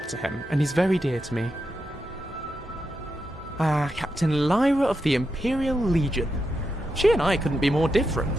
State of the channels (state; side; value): normal; both; correlation 0.86